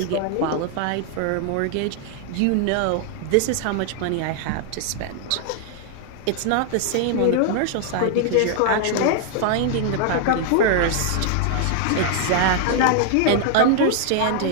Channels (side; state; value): both; different; correlation 0.00